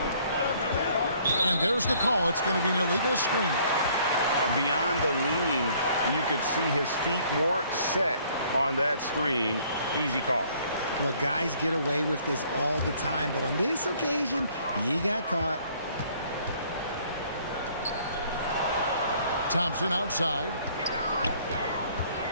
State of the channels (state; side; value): inverted; both; correlation -0.60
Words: And there's the call. It's going to be an illegal screen. Beyond the leaning, you could see his feet more set on that screen. Easy call. Look, guys get away with this all the time, but on this occasion, he got caught. Thompson outside.